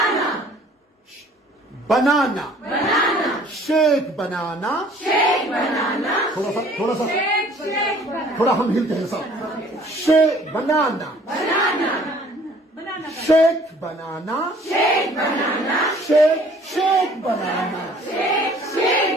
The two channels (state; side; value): normal; both; correlation 0.55